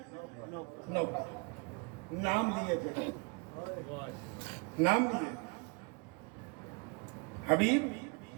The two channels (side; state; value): left; quieter; 31.0 dB